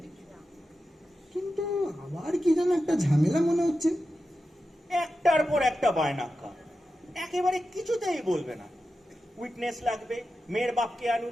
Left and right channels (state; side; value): normal; both; correlation 0.91